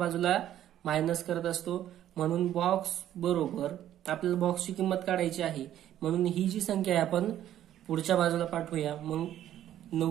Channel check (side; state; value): left; quieter; 11.8 dB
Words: मायनस करत असतो. म्हणून बॉक्स बरोबर आपल्याला बॉक्सची किंमत काढायची आहे, म्हणून ही जी संख्या आहे आपण पुढच्या बाजूला पाठवूया. मग